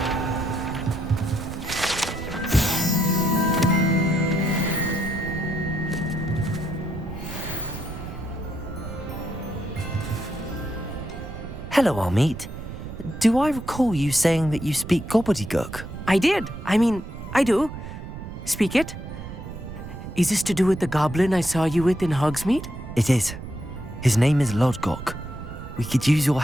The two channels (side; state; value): right; noise; rumble, 10 dB below the sound